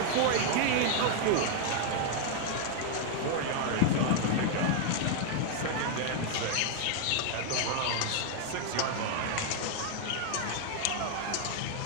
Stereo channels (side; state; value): both; different; correlation 0.00